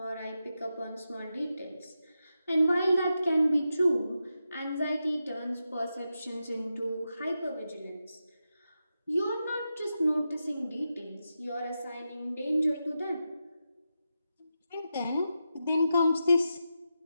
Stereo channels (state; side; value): inverted; both; correlation -0.89